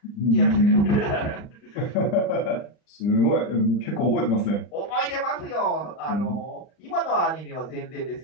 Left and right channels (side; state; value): right; late; 39 ms